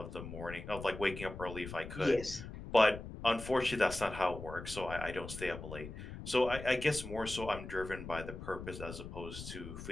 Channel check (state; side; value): noise; left; rumble, 10 dB below the sound